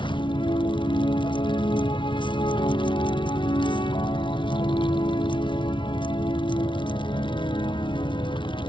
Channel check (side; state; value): right; late; 0.24 ms